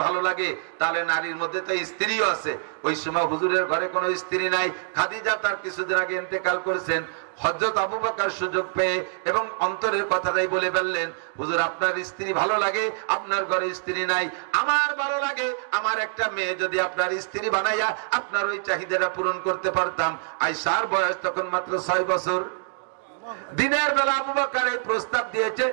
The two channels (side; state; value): left; silent; digital silence